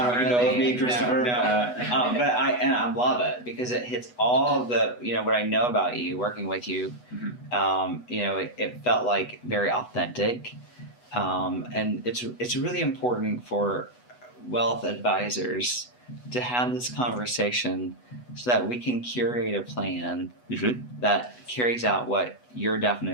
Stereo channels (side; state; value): right; late; 8.1 ms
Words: How really. you know of me, Christopher? No. But I love it because it hits all of the, you know, what I know about you, working with you. Mm-hmm. You know, it felt like very authentic, and it's really important for wealth advisors to have this conversation so that we can curate a plan that carries out what your